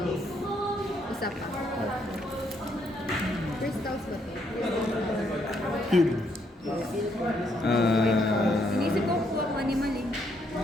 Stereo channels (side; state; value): both; normal; correlation 0.73